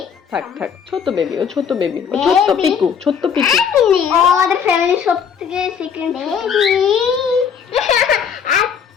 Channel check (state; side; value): quieter; right; 7.3 dB